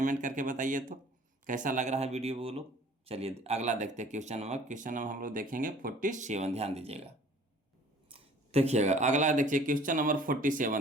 करके बताइए तो कैसा लग रहा है वीडियो बोलो। चलिए अगला देखते हैं क्वेश्चन नंबर हम लोग देखेंगे 47, ध्यान दीजिएगा। देखिएगा अगला देखिए क्वेश्चन नंबर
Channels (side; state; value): both; normal; correlation 0.52